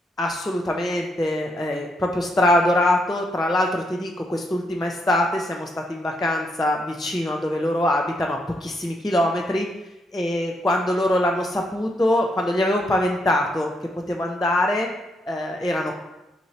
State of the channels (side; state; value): both; normal; correlation 0.77